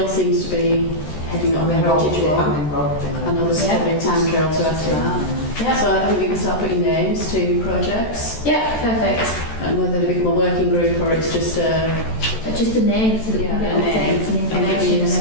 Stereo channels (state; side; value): late; right; 14 ms